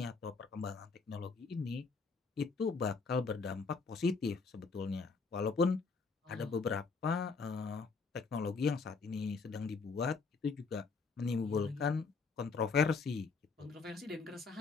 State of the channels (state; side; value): quieter; right; 4.6 dB